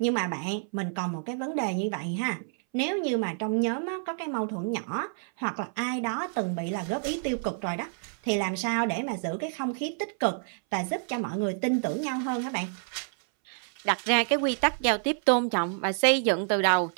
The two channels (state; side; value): silent; left; 59 dB below the other